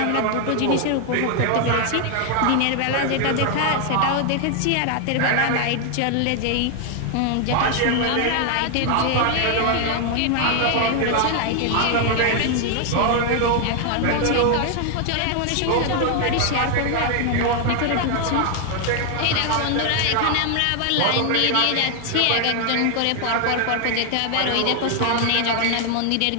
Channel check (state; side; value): different; both; correlation 0.00